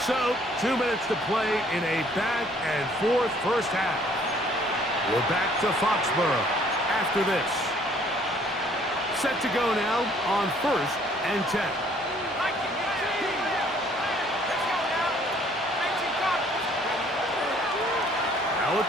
So, 2 minutes to play in a back-and-forth first half. We're back to Foxborough after this. Set to go now on first and 10. Now a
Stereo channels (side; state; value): both; normal; correlation 0.60